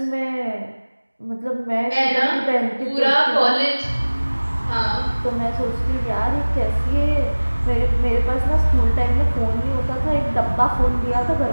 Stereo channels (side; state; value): both; inverted; correlation -1.00